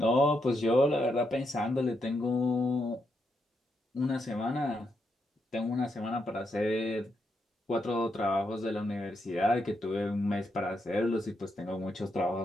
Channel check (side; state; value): both; normal; correlation 0.81